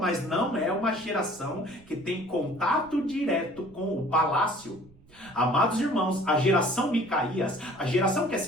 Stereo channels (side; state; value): right; noise; rumble, 25 dB below the sound